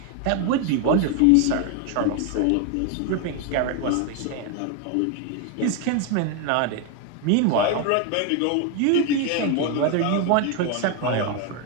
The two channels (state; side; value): different; both; correlation 0.01